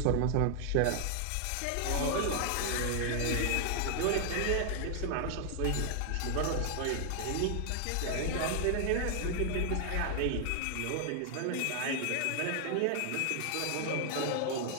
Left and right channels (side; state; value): both; different; correlation 0.00